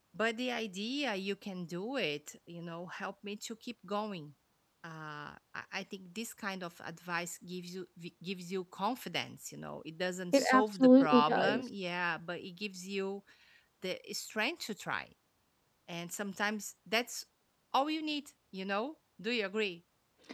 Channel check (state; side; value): identical; both; correlation 1.00